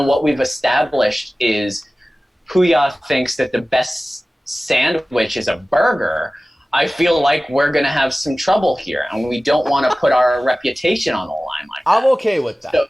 what we've established is Puya thinks that the best sandwich is a burger, I feel like we're going to have some trouble here, and we don't want to put our reputation on the line like that. I'm okay with that. So,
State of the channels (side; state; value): both; normal; correlation 0.97